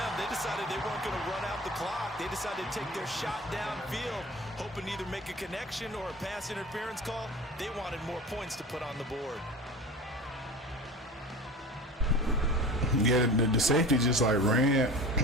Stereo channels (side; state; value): both; normal; correlation 0.36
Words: They decided they weren't going to run out the clock. They decided to take their shot downfield, hoping to either make a connection or a pass interference call. They wanted more points to put on the board. Yeah, the safety just like ran